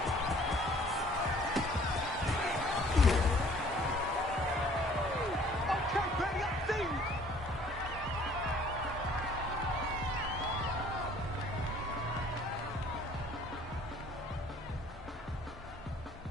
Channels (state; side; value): normal; both; correlation 0.55